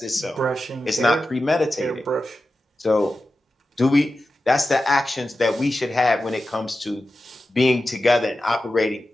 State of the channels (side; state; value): both; normal; correlation 0.92